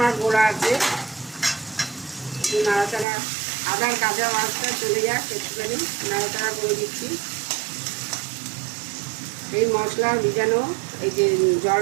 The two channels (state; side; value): drops out; left; at 3.1 s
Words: গোড়া আছে, নাড়াচাড়া আদার কাঁচা মাছটা চলে যাক একটুখানি নাড়াচাড়া করে দিচ্ছি। এই মশলা ভিজানো এই যে